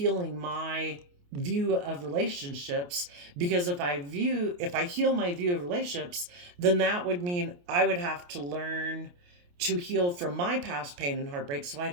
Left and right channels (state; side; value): late; left; 28 ms